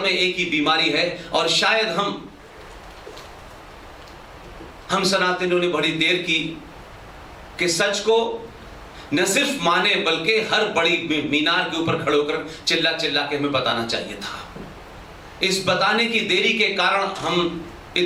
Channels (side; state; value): both; identical; correlation 1.00